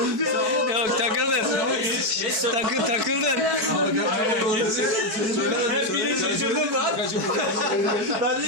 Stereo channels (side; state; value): left; late; 4.6 ms